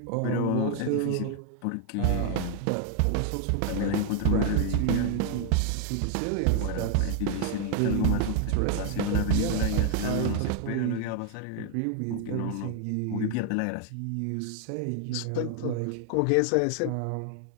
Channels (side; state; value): both; different; correlation 0.00